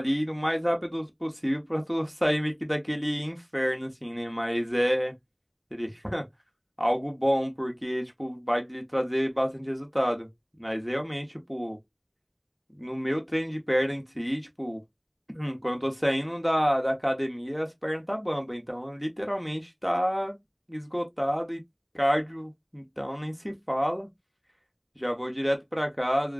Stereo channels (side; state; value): both; identical; correlation 1.00